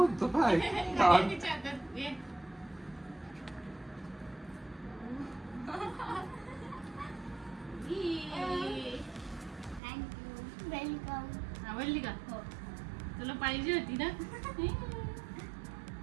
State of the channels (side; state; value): left; drops out; at 9.8 s